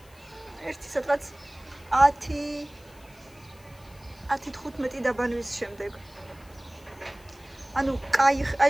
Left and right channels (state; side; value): noise; left; hiss, 27 dB below the sound